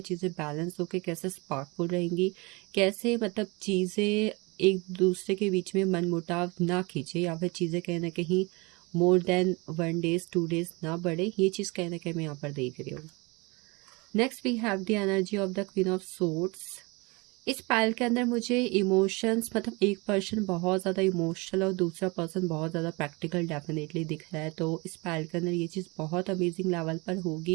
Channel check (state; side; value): quieter; left; 26.5 dB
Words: चीज़ें बैलेंस होकर कैसे स्पार्कफुल रहेंगी, कैसे मतलब चीज़ें एक दूसरे के बीच में मनमुटाव ना खींचे या फिर चीज़ें कहीं ना कहीं मोर देन 1 डेज 2 डेज ना बढ़े, ये चीज़ कहीं ना कहीं मैं यहाँ पर देख रही हूँ। Next we have the energy of the queen of swords. इस पाइल के अंदर मुझे इमोशंस, मतलब एक पर्सन बहुत ज़्यादा इमोशनल और दूसरा पर्सन बहुत ज़्यादा प्रैक्टिकल डेफिनेटली दिख रहा है। तो इस पाइल के अंदर ये चीज़ बहुत अमेजिंग लेवल पर